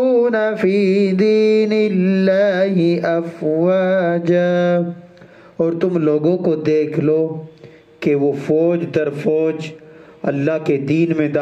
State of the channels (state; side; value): identical; both; correlation 1.00